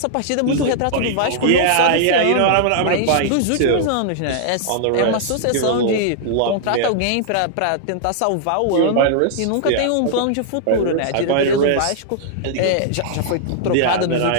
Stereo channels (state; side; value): different; both; correlation -0.01